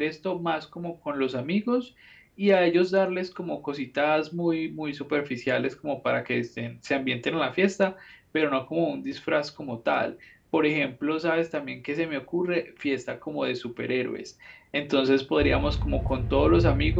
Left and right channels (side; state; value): both; identical; correlation 1.00